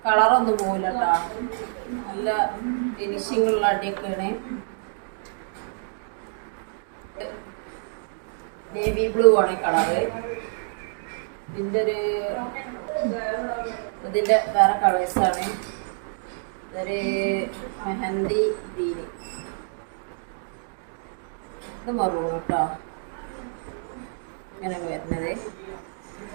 കളറൊന്നും പോകില്ല കേട്ടോ, നല്ല ഫിനിഷിംഗ് ഉള്ള അടിയൊക്കെയാണ്. നേവി ബ്ലൂ ആണ് കളറ്. ഇതിൻ്റെ വേറെ കളേഴ്സാണ്. ഇതൊരു മെഹന്തി ഗ്രീന്, ഇത് മറൂൺ കേട്ടോ, ഇങ്ങനെ വരുന്നത്.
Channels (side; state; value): left; silent; digital silence